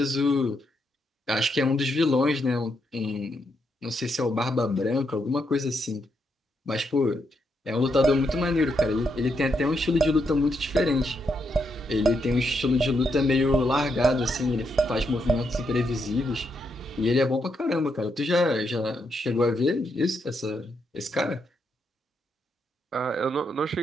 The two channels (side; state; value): both; normal; correlation 0.80